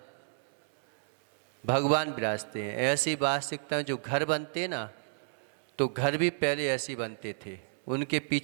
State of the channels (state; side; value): silent; left; 57 dB below the other